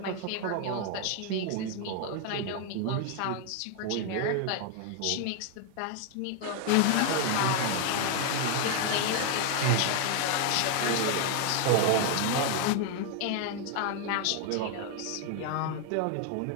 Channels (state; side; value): different; both; correlation 0.00